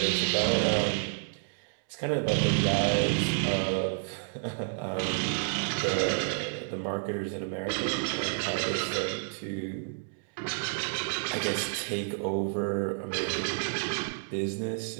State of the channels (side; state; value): left; silent; 58 dB below the other